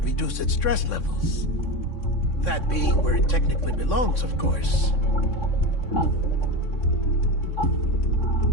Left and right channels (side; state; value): right; late; 3.6 ms